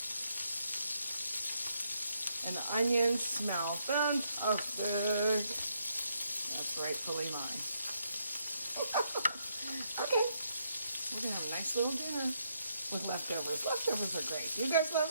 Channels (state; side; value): inverted; both; correlation -0.76